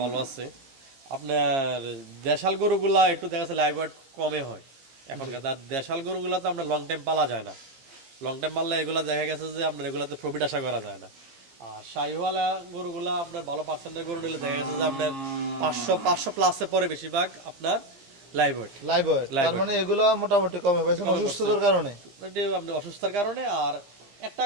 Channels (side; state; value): left; late; 15 ms